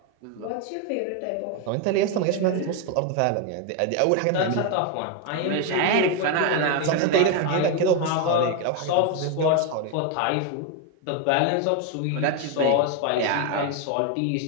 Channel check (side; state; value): both; different; correlation 0.01